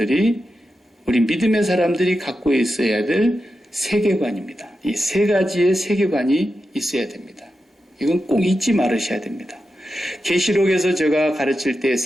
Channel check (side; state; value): both; normal; correlation 0.90